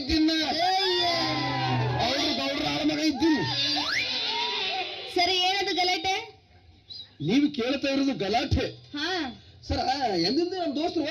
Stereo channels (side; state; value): both; identical; correlation 1.00